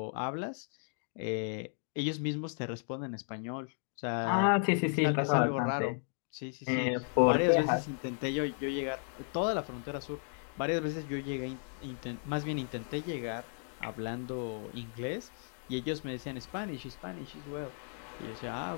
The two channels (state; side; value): silent; right; 55 dB below the other